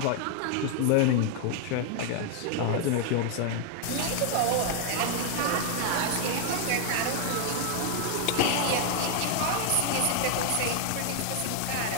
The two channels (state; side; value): different; both; correlation 0.00